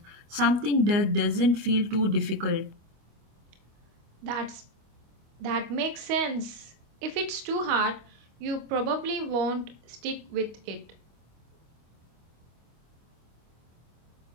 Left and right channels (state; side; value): late; left; 25 ms